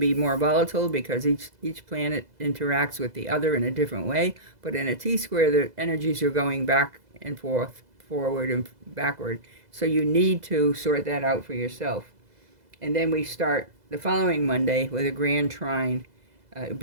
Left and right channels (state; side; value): late; left; 2.0 ms